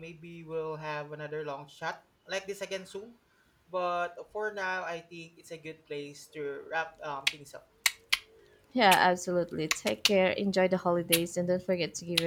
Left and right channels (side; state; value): both; identical; correlation 1.00